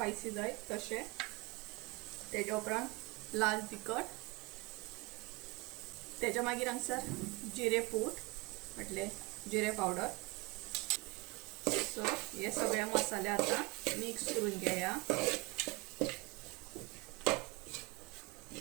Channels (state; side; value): quieter; left; 25.2 dB